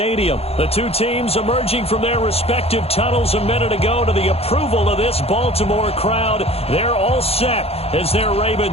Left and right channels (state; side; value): late; right; 0.29 ms